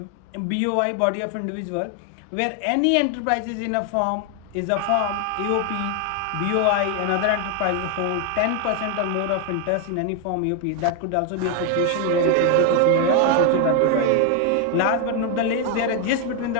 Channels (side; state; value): both; different; correlation 0.01